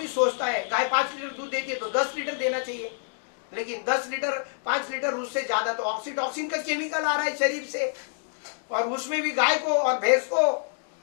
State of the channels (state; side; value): silent; right; digital silence